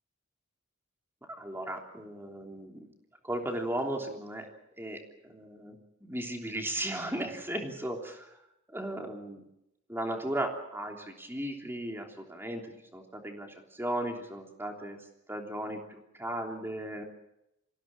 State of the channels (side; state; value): both; normal; correlation 0.59